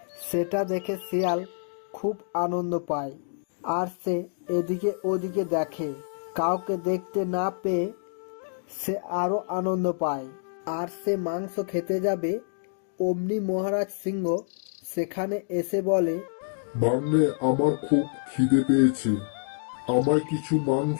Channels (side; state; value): right; silent; digital silence